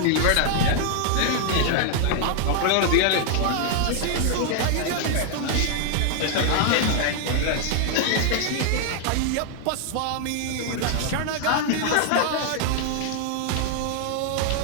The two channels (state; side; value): different; both; correlation 0.00